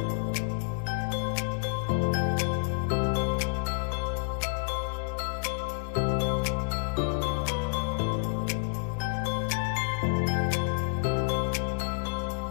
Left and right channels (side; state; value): right; silent; digital silence